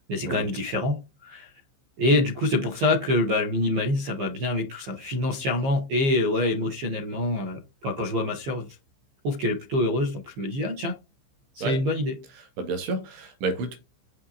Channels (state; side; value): late; left; 15 ms